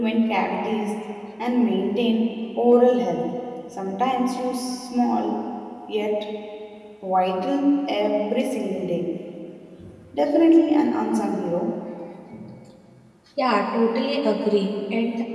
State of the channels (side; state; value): both; identical; correlation 1.00